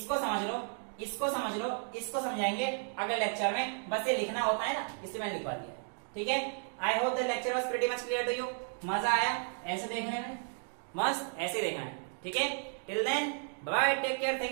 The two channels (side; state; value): left; silent; 55 dB below the other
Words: समझ लो, इसको समझ लो, इसको समझाएंगे अगले लेक्चर में, बस ये लिखना होता है ना, इसलिए मैंने लिखवा दिया, ठीक है। I hope the lecture was pretty much clear to you. मजा आया ऐसे देखने में? मस्त ऐसे देखना है, ठीक है। Till then bye, take care,